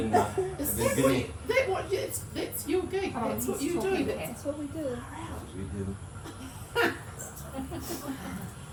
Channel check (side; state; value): both; identical; correlation 1.00